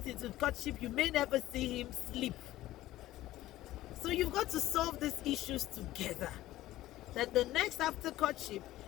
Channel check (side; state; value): right; quieter; 15.5 dB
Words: into courtship, you may never see him sleep. So you've got to solve these issues together. That the next after courtship